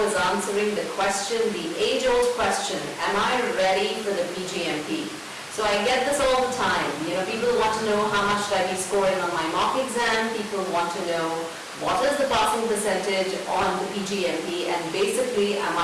is answering the question, the age-old question, am I ready for the PgMP? So I get this all the time. People want to know how much should I be scoring on my mock exam. People want to know what is the passing percentage on the PgMP, and basically, am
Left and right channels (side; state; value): both; identical; correlation 1.00